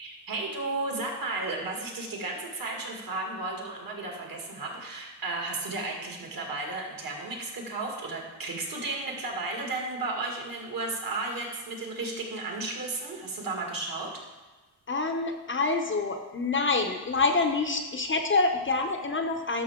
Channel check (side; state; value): both; normal; correlation -0.17